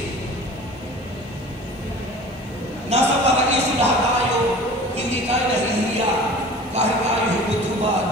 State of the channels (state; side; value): normal; both; correlation 0.42